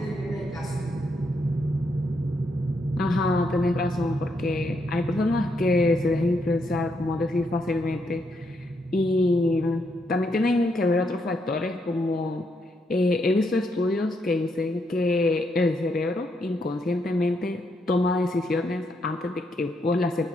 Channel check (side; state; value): both; normal; correlation 0.77